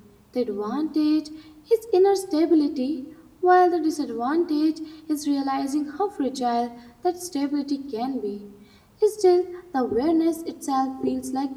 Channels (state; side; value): identical; both; correlation 1.00